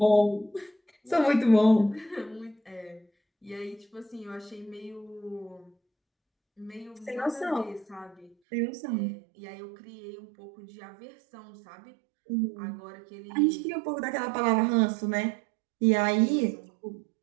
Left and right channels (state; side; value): drops out; left; at 8.3 s